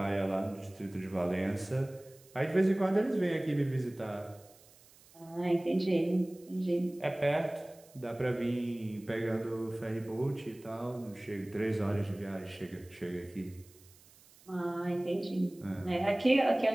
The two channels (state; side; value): noise; right; hiss, 26 dB below the sound